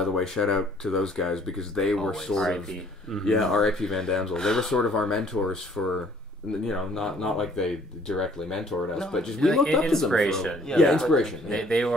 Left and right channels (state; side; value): normal; both; correlation 0.59